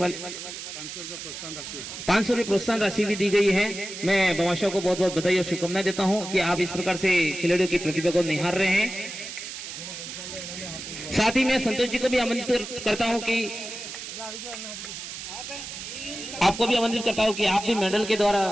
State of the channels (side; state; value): right; noise; hiss, 9 dB below the sound